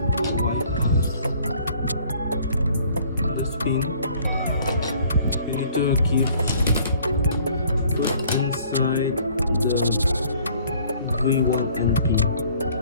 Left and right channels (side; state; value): both; inverted; correlation -0.57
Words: This pin. You need to put inside the V1 and P.